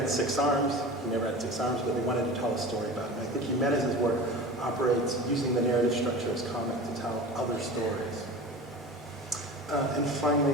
6 arms. He never had 6 arms, but they wanted to tell a story about him. I think Jimenez's work operates using the narrative structure as comic to tell other stories. And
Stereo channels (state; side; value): normal; both; correlation 0.34